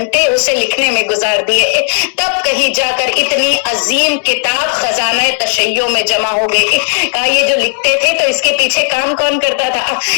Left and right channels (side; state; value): right; silent; digital silence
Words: اسے لکھنے میں گزار دیے, تب کہیں جا کر اتنی عظیم کتاب خزانہ تشیع میں جمع ہو گئی. کہا یہ جو لکھتے تھے تو اس کے پیچھے کام کون کرتا تھا؟